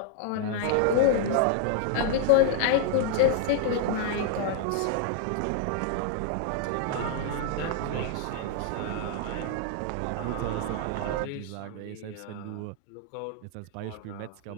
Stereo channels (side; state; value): both; different; correlation -0.01